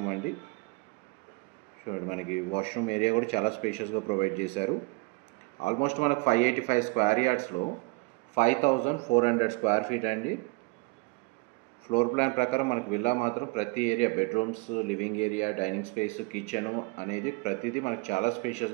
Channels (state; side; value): quieter; left; 28.3 dB